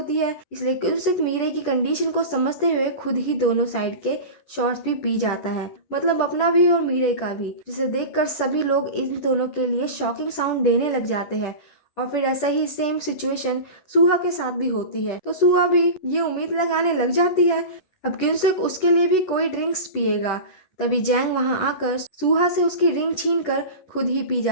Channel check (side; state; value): right; late; 10 ms